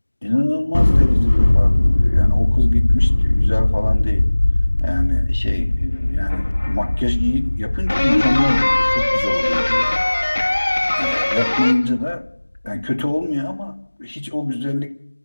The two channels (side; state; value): both; inverted; correlation -1.00